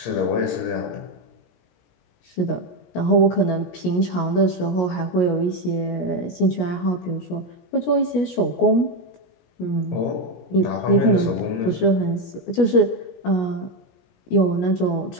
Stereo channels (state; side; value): late; right; 17 ms